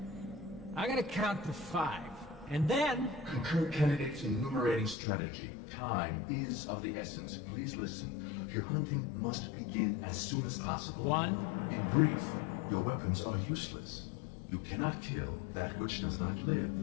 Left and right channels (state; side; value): drops out; right; at 5.0 s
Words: I gotta count to 5. And then... Concur candidates enumerating strategy. Time is of the essence. Please listen. Your hunting must begin as soon as possible. 1. In brief, your weapons are useless. You cannot kill that which does not live.